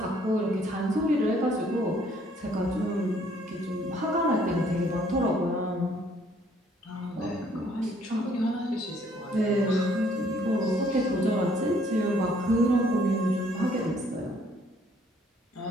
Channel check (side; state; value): both; normal; correlation 0.63